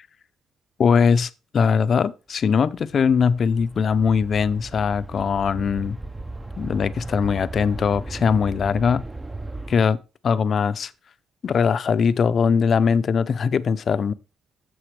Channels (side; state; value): right; quieter; 5.7 dB